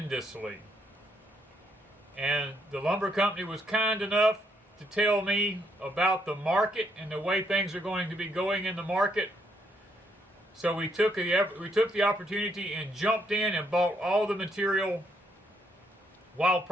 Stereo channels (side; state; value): both; normal; correlation 0.74